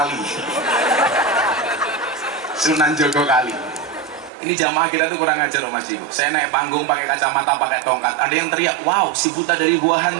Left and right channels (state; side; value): drops out; left; at 4.3 s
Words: Sunan Jogo Kali. Ini jamaah kita tuh kurang ajar loh Mas Diko. Saya naik panggung pakai kacamata, pakai tongkat, ada yang teriak, wow si buta dari gua